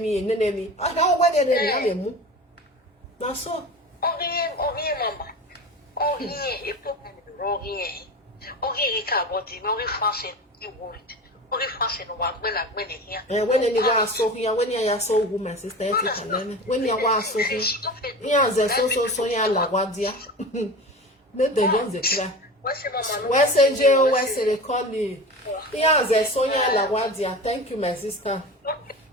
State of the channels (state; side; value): normal; both; correlation 0.32